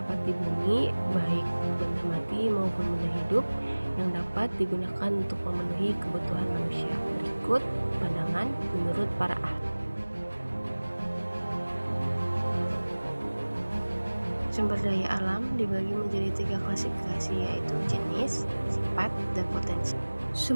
di bumi, baik benda mati maupun benda hidup, yang dapat digunakan untuk memenuhi kebutuhan manusia. Berikut pandangan menurut para ahli. Sumber daya alam dibagi menjadi 3 klasifikasi, yaitu jenis, sifat, dan potensi.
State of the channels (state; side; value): inverted; both; correlation -1.00